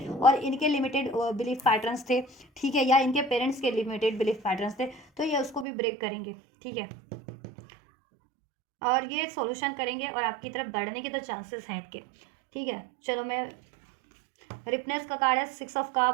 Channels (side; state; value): left; drops out; at 5.7 s